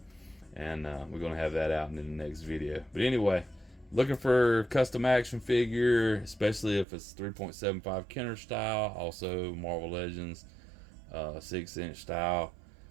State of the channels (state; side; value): drops out; left; at 6.9 s